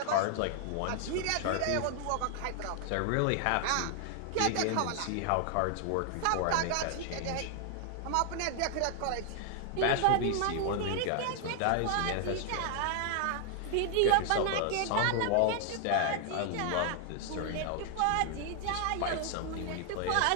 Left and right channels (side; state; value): both; different; correlation 0.00